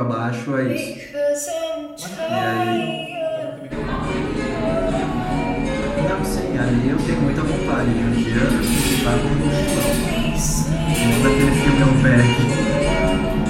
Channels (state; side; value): identical; both; correlation 1.00